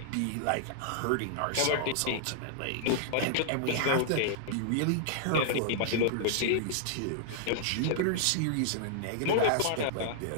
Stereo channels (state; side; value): different; both; correlation -0.01